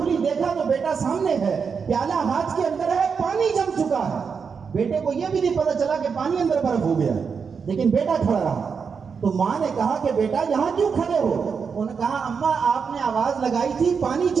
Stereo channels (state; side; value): quieter; left; 5.9 dB